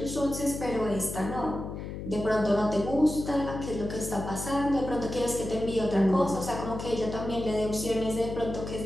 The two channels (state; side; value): noise; left; hum, 7 dB below the sound